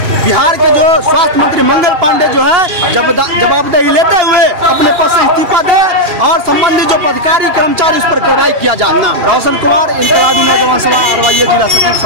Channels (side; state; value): left; late; 2.8 ms